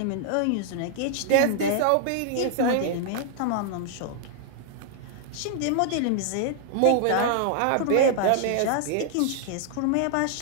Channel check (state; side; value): different; both; correlation 0.00